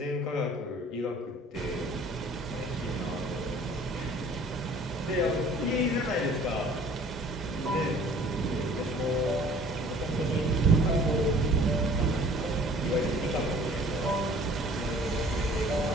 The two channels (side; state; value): both; normal; correlation 0.51